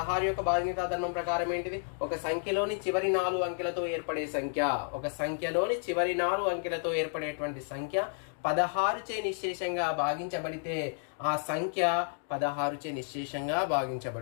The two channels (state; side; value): silent; right; 57 dB below the other